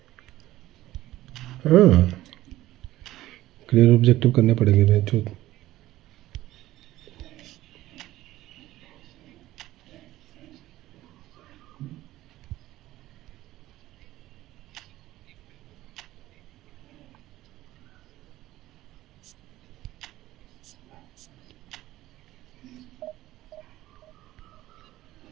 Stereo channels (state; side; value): quieter; left; 15.6 dB